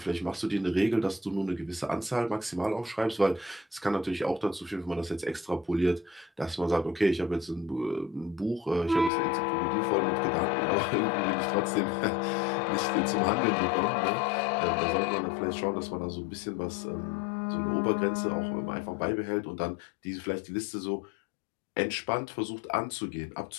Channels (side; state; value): right; drops out; at 9.1 s